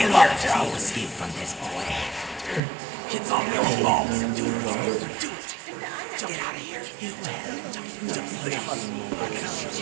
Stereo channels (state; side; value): drops out; left; at 2.6 s